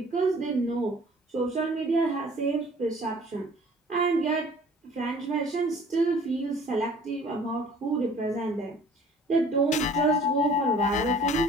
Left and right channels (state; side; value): normal; both; correlation 0.51